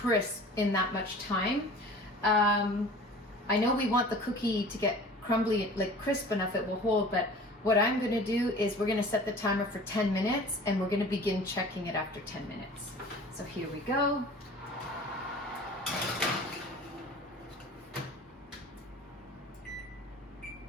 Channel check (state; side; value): normal; both; correlation 0.42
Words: in that much time. I know we want the cookie to get crumbly, like crisp enough it will hold, but what I'm gonna do is we're gonna set the timer for 10 minutes and we're gonna begin checking it after 10 minutes. So here we go.